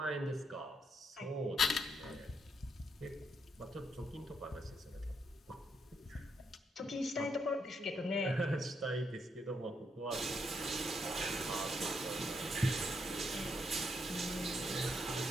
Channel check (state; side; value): normal; both; correlation 0.77